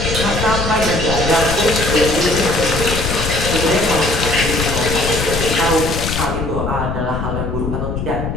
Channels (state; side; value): noise; left; rumble, 3 dB below the sound